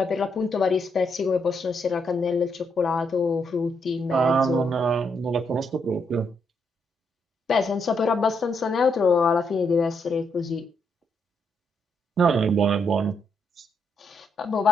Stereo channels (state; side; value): normal; both; correlation 0.77